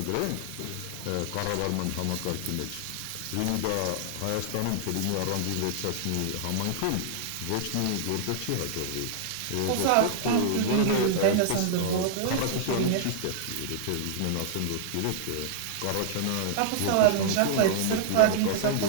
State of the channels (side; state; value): both; different; correlation -0.01